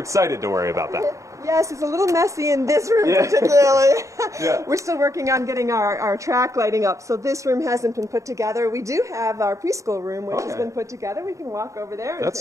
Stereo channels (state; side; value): late; left; 0.15 ms